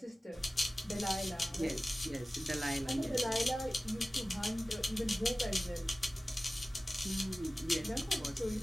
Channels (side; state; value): both; normal; correlation 0.96